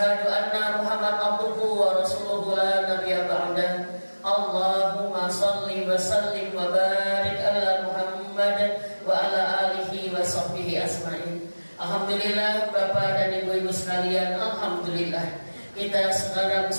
anna Muhammad abduhu wa rasuluhu la nabiyya ba'dah. Allahumma shalli wa sallim wa barik ala Muhammad wa ala alihi wa sahbihi asma'in. Alhamdulillah Bapak dan Ibu-ibu sekalian, alhamdulillah kita sekarang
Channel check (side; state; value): both; inverted; correlation -1.00